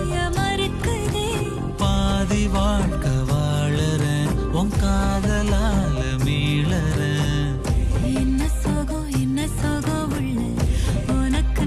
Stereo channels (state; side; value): identical; both; correlation 1.00